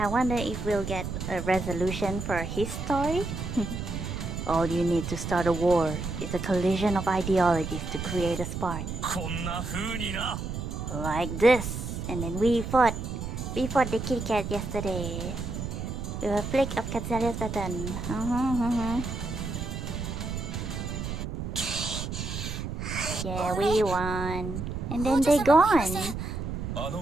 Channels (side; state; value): right; noise; rumble, 5 dB below the sound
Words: wonder if we'll get a resolution for his story. All you need to start a war is a collision of ideologies to create a spark. こんな風にな。 Like this. And then we fought the kitty cat yesterday. With a flick of Katzelia's baton. Yeah, we won. And then they gone. あ